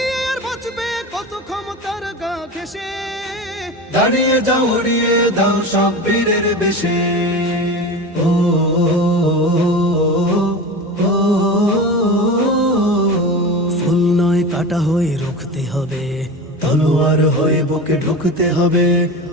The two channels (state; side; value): normal; both; correlation 0.28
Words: আর বাঁচবে কত ক্ষমতার গা ঘেঁষে, দাঁড়িয়ে যাও উড়িয়ে দাও সব বীরের বেশে। ও ফুল নয় কাটা হয়ে রুখতে হবে, তলোয়ার হয়ে বুকে ঢুকতে হবে,